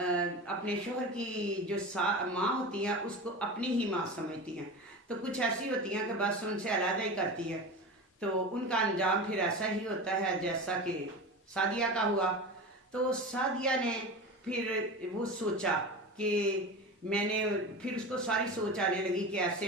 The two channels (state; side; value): normal; both; correlation 0.29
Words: शोहर की जो माँ होती हैं उसको अपनी ही माँ समझती हैं। तो कुछ ऐसी होती हैं कि बस उनसे अलग ही करती है, तो उनका अंजाम फिर ऐसा ही होता है जैसा कि सादिया का हुआ। तो सादिया ने फिर वो सोचा कि मैंने फिर उसको सारी सोच आने लगी कि